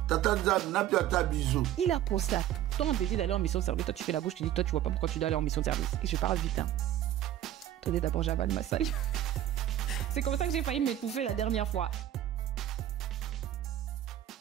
Il a pensé à tout. Toi, on te dit d'aller en mission de service. Toi, tu fais la bouche, tu dis, toi, tu vois pas pourquoi tu dois aller en mission de service. Et je parle vite, hein. Attendez, d'abord, j'avale ma salle. C'est comme ça que j'ai failli m'étouffer la dernière fois.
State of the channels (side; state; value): left; quieter; 12.3 dB